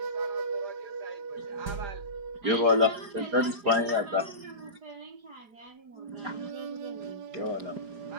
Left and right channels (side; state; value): left; late; 4.9 ms